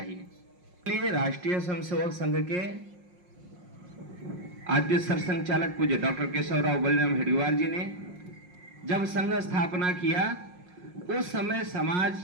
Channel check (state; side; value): late; left; 5.6 ms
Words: इसलिए राष्ट्रीय स्वयंसेवक संघ के आद्य सरसंघचालक पूज्य डॉक्टर केशवराव बलिराम हेडगेवार जी ने जब संघ स्थापना किया, उस समय समाज